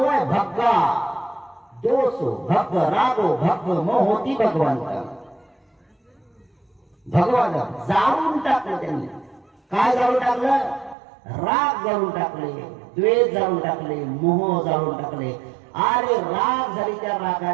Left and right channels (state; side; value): drops out; left; at 11.0 s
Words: आहे भग्गा दोषो भग रागो भग मोहोती भगवंत. भगवान जाळून टाकलं त्यांनी. काय जाळून टाकलं? राग जाळून टाकले, द्वेष जाळून टाकले, मोह जाळून टाकले. अरे राग झाली, त्या